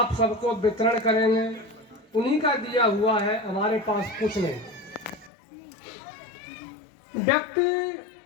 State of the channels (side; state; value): right; drops out; at 5.3 s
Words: सबको वितरण करेंगे। उन्हीं का दिया हुआ है, हमारे पास कुछ नहीं। व्यक्ति